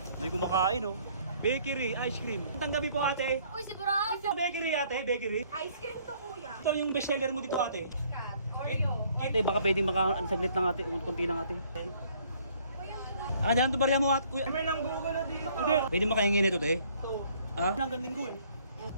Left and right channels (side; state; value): both; inverted; correlation -0.61